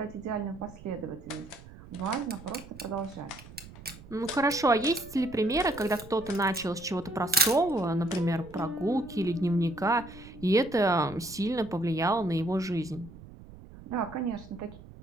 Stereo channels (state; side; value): noise; right; rumble, 18 dB below the sound